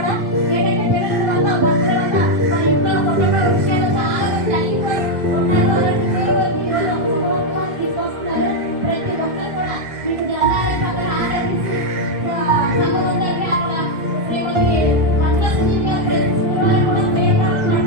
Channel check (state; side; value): late; left; 1.7 ms